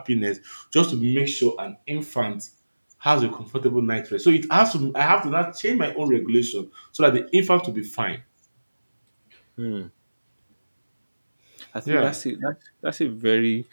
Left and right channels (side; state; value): both; inverted; correlation -1.00